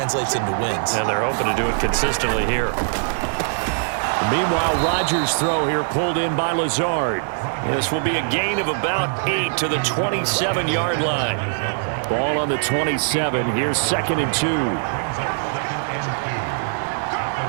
into wins. And they're hoping to do it consistently here. Meanwhile, Rodgers' throw here pulled in by Lazard. This will be a gain of about 8 to the 27-yard line. Ball on the 27. Here's 2nd and 2.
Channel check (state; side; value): silent; left; digital silence